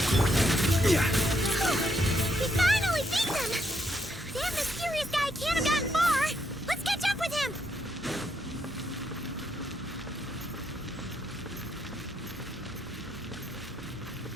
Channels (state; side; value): normal; both; correlation 0.76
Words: We finally beat them! That mysterious guy can't have gotten far! Let's catch up with him!